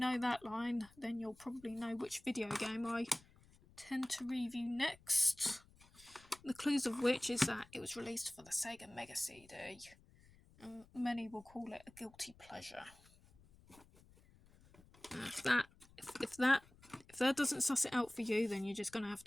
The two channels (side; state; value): left; noise; rumble, 26 dB below the sound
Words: that line, then you'll probably know which video game I tend to review next. The clues of which is that it was released for the Sega Mega CD, and many will call it a guilty pleasure. If that doesn't suss it out for you, then you're just going to have